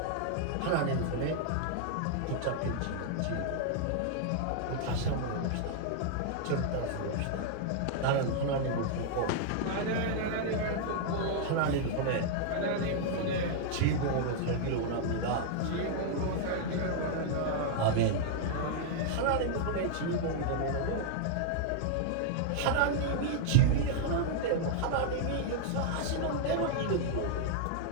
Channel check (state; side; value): different; both; correlation -0.01